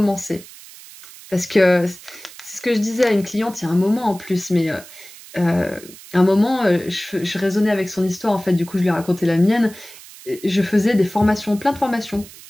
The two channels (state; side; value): noise; right; hiss, 19 dB below the sound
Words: Parce que c'est ce que je disais à une cliente il y a un moment en plus, mais un moment, je raisonnais avec son histoire, en fait, du coup, je lui ai raconté la mienne. Je faisais des formations, plein de formations,